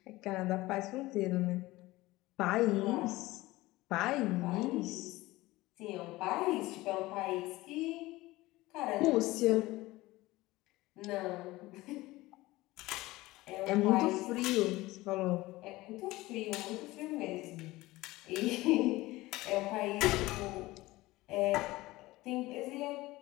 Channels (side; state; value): right; quieter; 19.1 dB